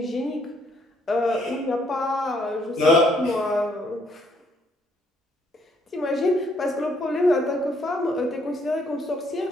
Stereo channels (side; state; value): both; normal; correlation 0.69